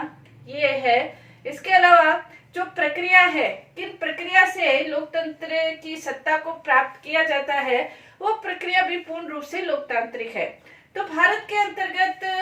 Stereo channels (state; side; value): identical; both; correlation 1.00